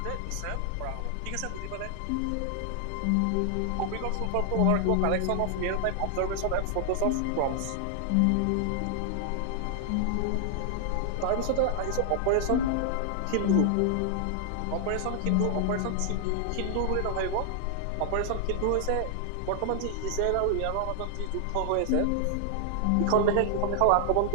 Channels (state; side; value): different; both; correlation 0.00